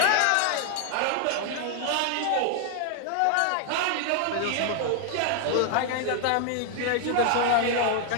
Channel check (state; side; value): different; both; correlation 0.00